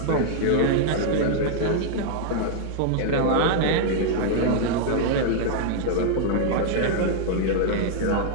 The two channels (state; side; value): different; both; correlation -0.01